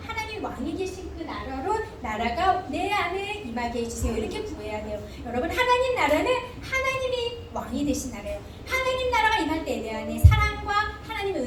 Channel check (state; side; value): identical; both; correlation 1.00